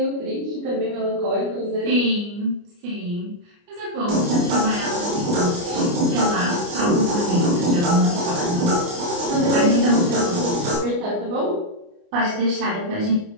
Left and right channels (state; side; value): late; left; 29 ms